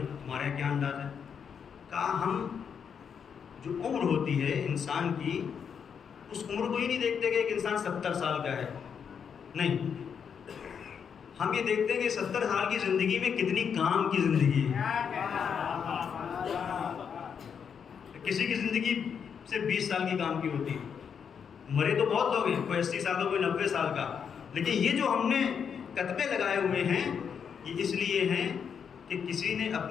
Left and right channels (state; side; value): quieter; right; 7.1 dB